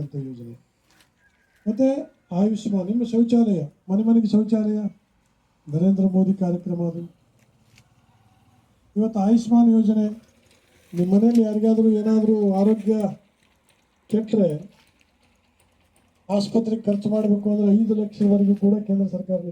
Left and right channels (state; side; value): identical; both; correlation 1.00